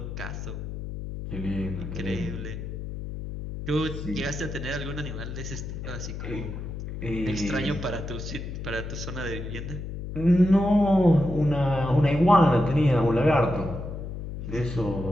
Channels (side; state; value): left; noise; hum, 7 dB below the sound